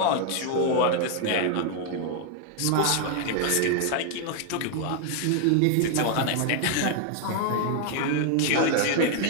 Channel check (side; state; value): both; different; correlation 0.00